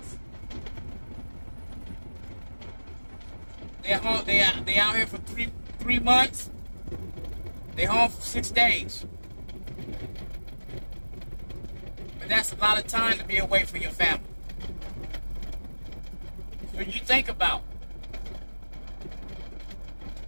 They're home. They out here for three months. They home for 6 days. But that's a lot of time to be away from your family. So you think about,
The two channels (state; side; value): inverted; both; correlation -1.00